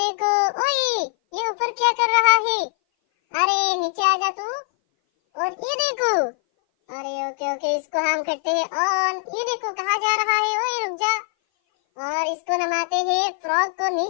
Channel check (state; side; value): silent; right; 58 dB below the other